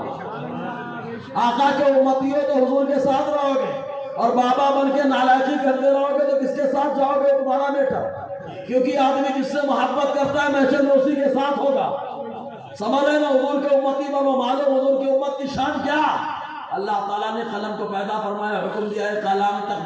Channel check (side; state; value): both; identical; correlation 1.00